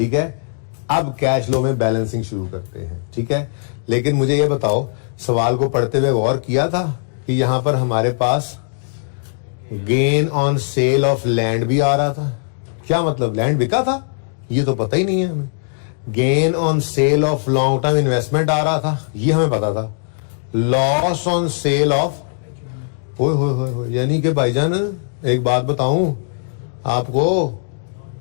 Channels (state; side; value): silent; right; digital silence